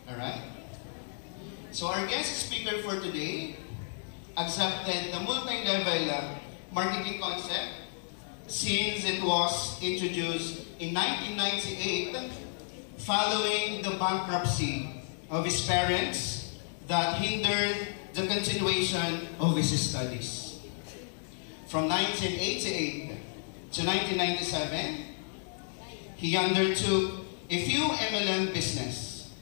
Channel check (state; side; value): silent; right; digital silence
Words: Alright? So our guest speaker for today accepted the multi-level marketing concept since it was introduced in 1998 following the bankruptcy of his parents that hindered the continuation of his studies. From 1988 to 1997, he undertook a few MLM business.